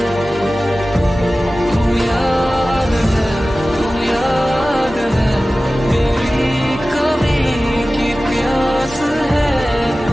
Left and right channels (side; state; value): both; normal; correlation 0.96